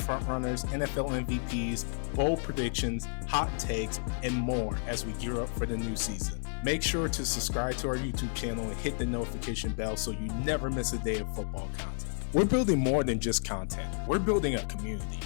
frontrunners, NFL MVPs, bold predictions, hot takes, and more as we gear up for the new season. Make sure to subscribe to our YouTube channel and hit the notification bell so you never miss a day of football content. We're building more than just content. We're building a community.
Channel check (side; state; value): right; silent; 57 dB below the other